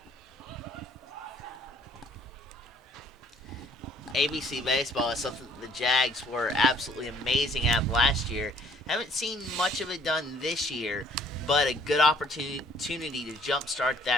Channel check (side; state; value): both; normal; correlation 0.60